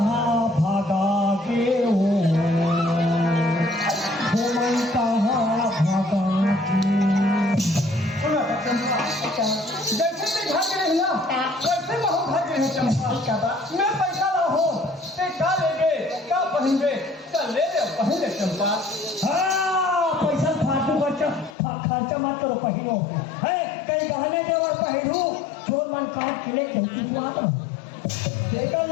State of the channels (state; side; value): drops out; right; at 21.6 s